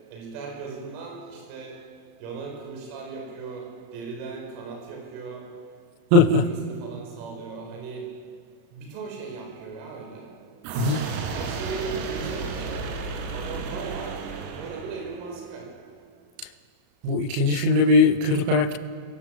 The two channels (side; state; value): left; late; 35 ms